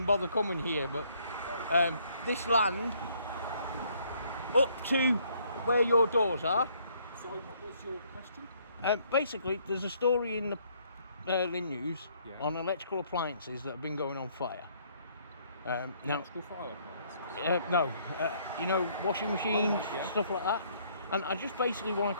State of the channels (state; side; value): inverted; both; correlation -0.66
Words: bother coming here, but this land up to where your doors are. Sorry, what was your question? Basically, there's a story in the Lynn News Yeah. on electrical appliances that have been going on fire. Now, Electrical fire appliances? no, you know, washing machines, Oh, right, yeah. stuff like that. And I just basically want